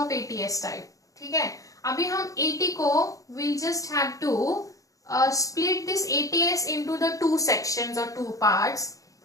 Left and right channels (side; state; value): right; late; 0.16 ms